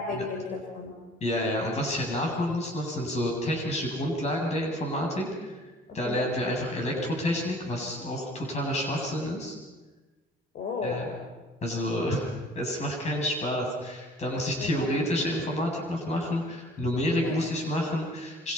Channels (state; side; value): normal; both; correlation 0.51